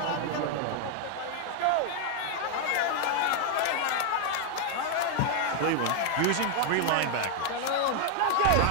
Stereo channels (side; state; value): both; different; correlation 0.00